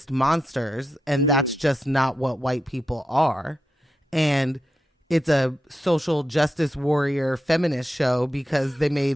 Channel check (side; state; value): both; normal; correlation 0.87